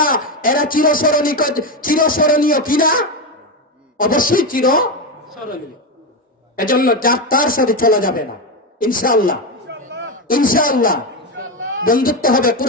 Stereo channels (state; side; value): normal; both; correlation 0.12